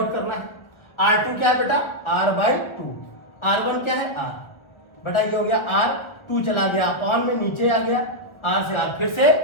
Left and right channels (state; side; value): late; right; 1.4 ms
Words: करना है। R2 क्या है बेटा? R/2। R1 क्या है? R। बेटा ये हो गया R2 चला गया अपॉन में, नीचे आ गया, R से R फिर से